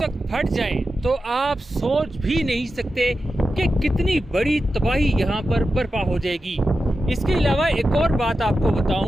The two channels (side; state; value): both; normal; correlation 0.91